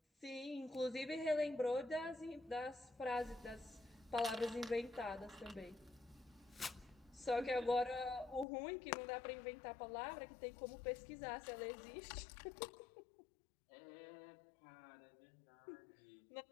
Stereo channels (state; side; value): drops out; right; at 8.5 s